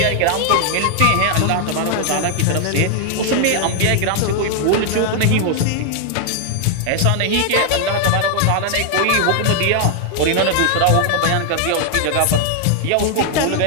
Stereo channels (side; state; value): both; different; correlation 0.00